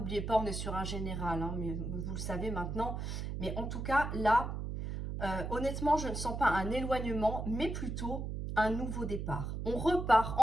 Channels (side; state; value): right; noise; hum, 4 dB below the sound